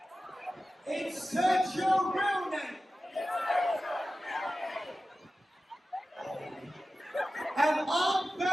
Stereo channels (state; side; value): normal; both; correlation 0.94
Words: Insert your real name. And on